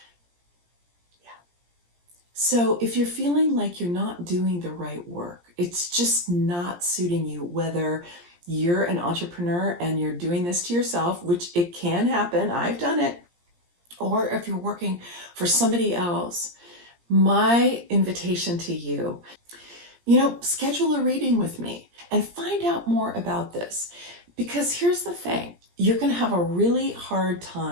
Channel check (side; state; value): left; late; 17 ms